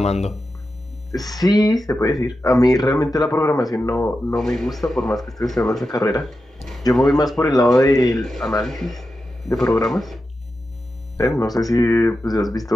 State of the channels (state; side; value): normal; both; correlation 0.90